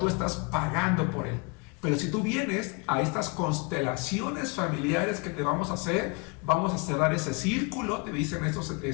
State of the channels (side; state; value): right; quieter; 30.4 dB